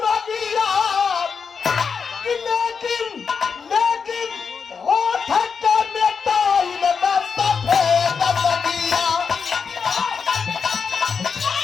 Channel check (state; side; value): quieter; right; 5.9 dB